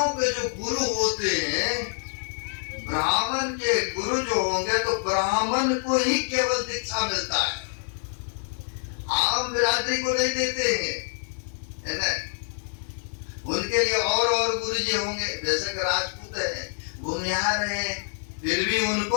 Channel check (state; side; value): silent; right; 60 dB below the other